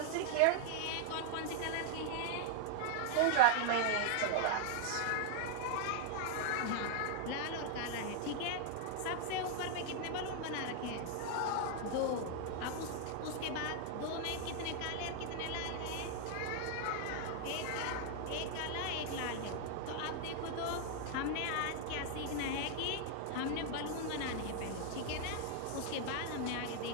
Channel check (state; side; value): different; both; correlation 0.00